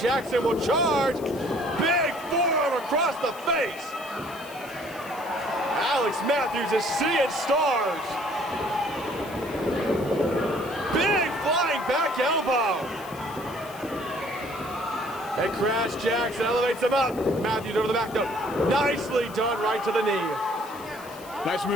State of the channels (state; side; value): noise; left; hiss, 19 dB below the sound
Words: will charge. Big forearm across the face. Alex Matthews is seeing stars. Big flying back elbow. And Crash Jackson elevates him up. Matthews over the back though. Nicely done right to the knee. Nice